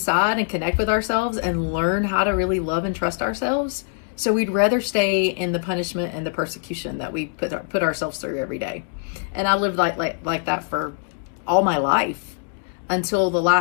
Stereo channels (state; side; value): silent; right; 63 dB below the other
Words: and connect with ourselves and learn how to really love and trust ourselves. So we'd rather stay in the punishment and the persecution that we put ourselves through every day. And I lived like that for all my life until the